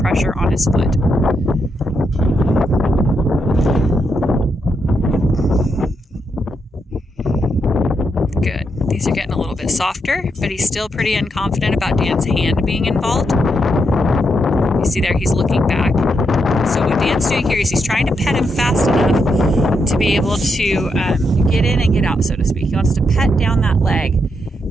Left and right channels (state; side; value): normal; both; correlation 0.81